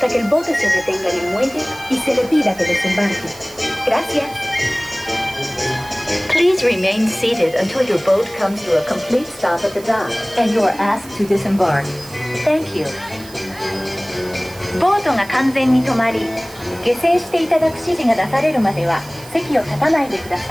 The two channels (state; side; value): noise; right; hiss, 19 dB below the sound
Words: que el bote se detenga en el muelle y se le pida que desembarque. Gracias. Please remain seated until your boat comes to a complete stop at the dock and you are asked to disembark. Thank you. ボートが完全に止まり、下船していただく指示が出されるまでは席を立たないでくだ